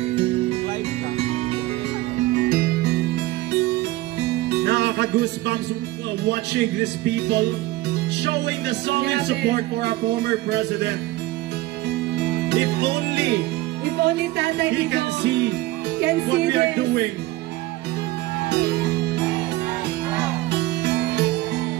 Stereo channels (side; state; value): left; quieter; 17.9 dB